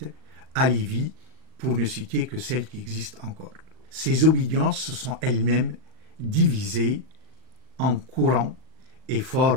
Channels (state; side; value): late; left; 38 ms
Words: alevis, pour ne citer que celles qui existent encore. Ces obédiences se sont elles-mêmes divisées en courants et